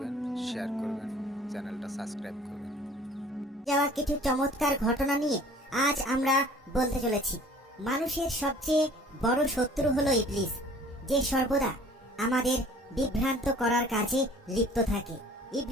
শেয়ার করবেন, চ্যানেলটা সাবস্ক্রাইব করবেন। যাওয়া কিছু চমৎকার ঘটনা নিয়ে আজ আমরা বলতে চলেছি। মানুষের সবচেয়ে বড় শত্রু হলো ইবলিস, যে সর্বদা আমাদের বিভ্রান্ত করার কাজে লিপ্ত থাকে।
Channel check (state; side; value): normal; both; correlation 0.51